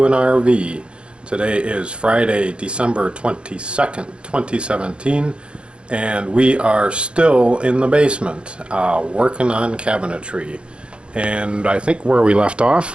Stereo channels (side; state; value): left; late; 0.056 ms